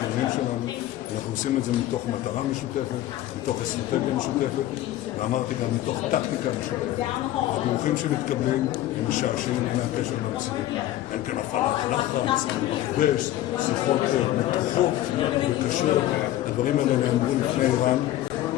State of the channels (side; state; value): right; quieter; 14.0 dB